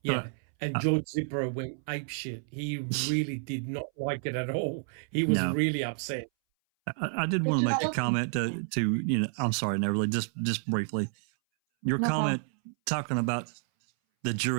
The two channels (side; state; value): left; silent; 58 dB below the other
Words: Yeah. And George Zipper went apeshit. He really did not like it at all. He was really upset. I did want to make a comment to I'm sorry, Neverly, just briefly. Your comment talking about the